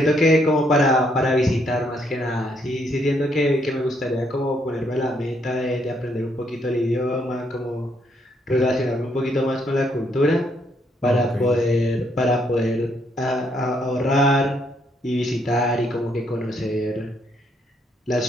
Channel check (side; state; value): both; normal; correlation 0.72